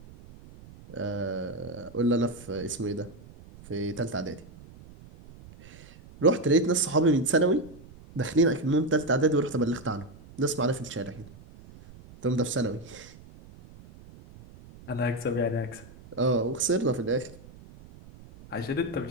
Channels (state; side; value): noise; right; rumble, 20 dB below the sound